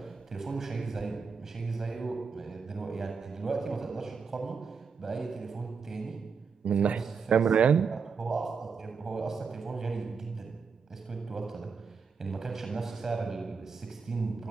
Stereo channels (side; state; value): left; quieter; 5.5 dB